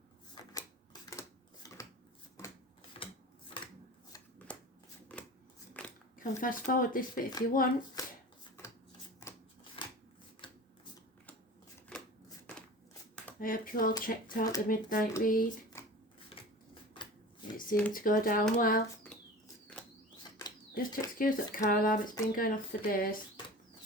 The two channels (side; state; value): both; normal; correlation 0.36